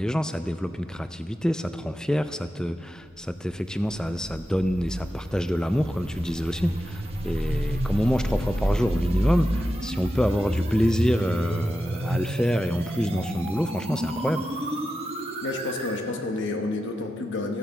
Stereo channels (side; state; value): both; normal; correlation 0.90